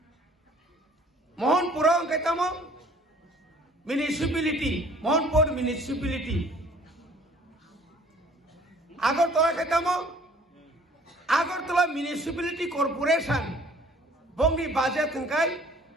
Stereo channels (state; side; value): normal; both; correlation 0.54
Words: Mohanpur অঙ্কাইতাম municipality Mohanpur municipality Agartala খাইতাম Agartala municipality corporation বঙ্গি budget থংকাই